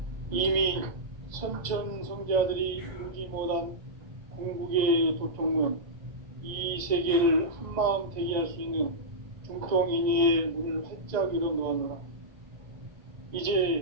이미 선천성자들이 이루지 못한 궁극의 도통문, 이 세계를 한마음 되게 할 수 있는 중통인의의 문을 활짝 열어 놓았노라.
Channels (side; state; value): left; late; 1.9 ms